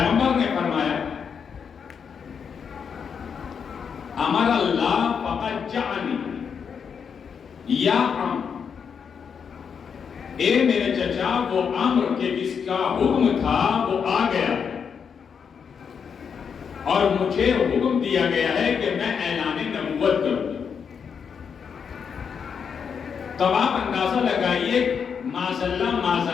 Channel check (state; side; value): quieter; right; 6.7 dB